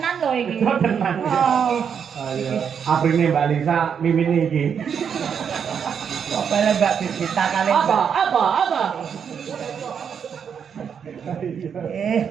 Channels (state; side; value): quieter; left; 7.3 dB